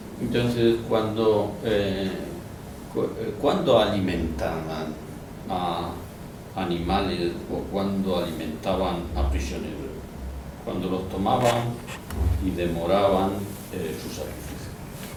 Entonces, cuando ¿Cuándo alimentaban a animales o cuándo alimentaban a prisioneros? Cuando los tomaban y demoraban su sacrificio.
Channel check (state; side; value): identical; both; correlation 1.00